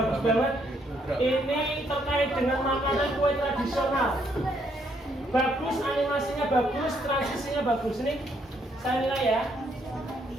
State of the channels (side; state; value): both; normal; correlation 0.71